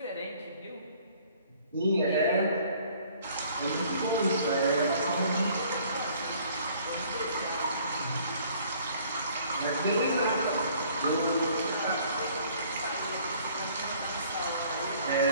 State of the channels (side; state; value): both; inverted; correlation -0.57